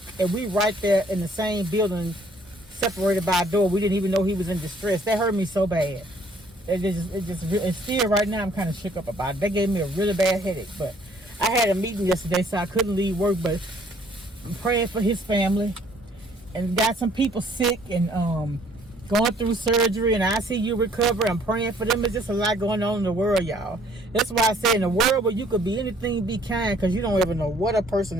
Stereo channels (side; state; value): both; normal; correlation 0.61